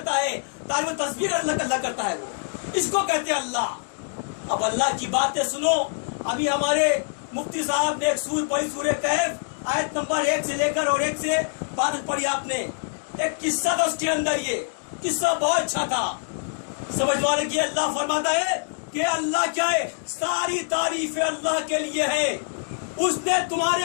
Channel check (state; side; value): silent; right; digital silence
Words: ہے، تعریف تسبیح اللہ کرتا ہے. وہ اس کو کہتے ہیں اللہ. اب اللہ کی باتیں سنو. ابھی ہمارے مفتی صاحب نے ایک سورہ پڑھی، سورہ کہف، آیت نمبر 1 سے لے کر اور 1 سے 12 پڑھی. آپ نے ایک قصہ تھا اس کے اندر. یہ قصہ بہت اچھا تھا سمجھوانے کی. اللہ فرماتا ہے کہ اللہ کیا ہے؟ ساری تعریف اللہ کے لیے ہے. اس نے